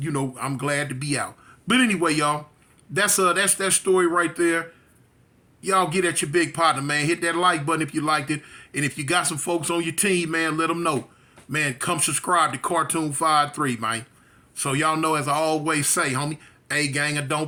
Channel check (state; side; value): identical; both; correlation 1.00